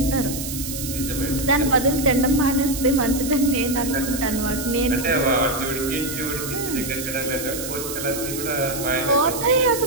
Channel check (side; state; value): right; noise; hiss, 7 dB below the sound